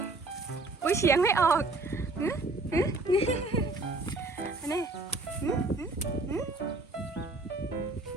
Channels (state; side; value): quieter; left; 3.2 dB